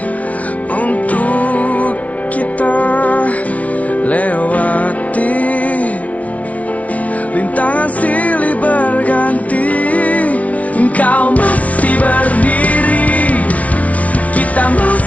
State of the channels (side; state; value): right; late; 0.067 ms